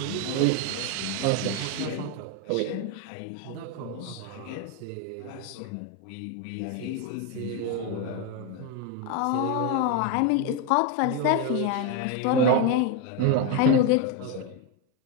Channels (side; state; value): both; different; correlation 0.02